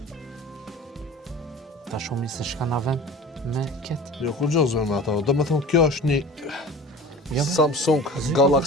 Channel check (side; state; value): both; normal; correlation 0.39